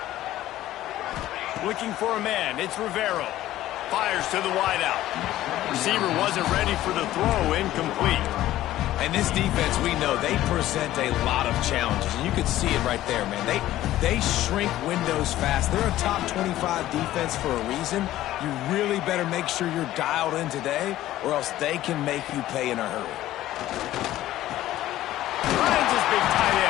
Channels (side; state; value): right; quieter; 14.4 dB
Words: Looking for a man. It's Rivero. Fires to the wideout. Receiver wasn't ready for the throw. Incomplete. And this defense, we know, they present a lot of challenges. And you can see it right there, man. They shrink windows fast. They're a top 25 defense for a reason. You really better make sure you're dialed in today, or else they can make you pay in a hurry. Finds his big tight